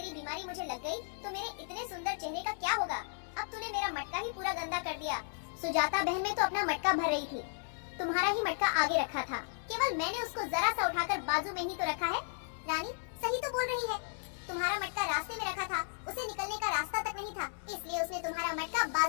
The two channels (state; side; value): silent; right; 55 dB below the other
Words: बीमारी मुझे लग गई तो मेरे इतने सुंदर चेहरे का क्या होगा? अब तूने मेरा मटका ही पूरा गंदा कर दिया। सुजाता बहन में तो अपना मटका भर रही थी, तुम्हारा ही मटका आगे रखा था। केवल मैंने उसको जरा सा उठाकर बाजू में ही तो रखा है। रानी सही तो बोल रही है, तुम्हारा मटका रास्ते में रखा था, उसे निकलने का रास्ता तक नहीं था, इसलिए उसने तुम्हारा मटका